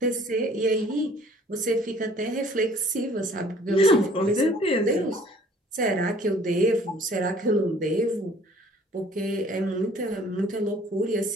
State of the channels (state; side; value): normal; both; correlation 0.55